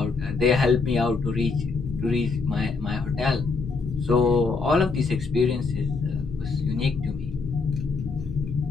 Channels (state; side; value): quieter; right; 4.3 dB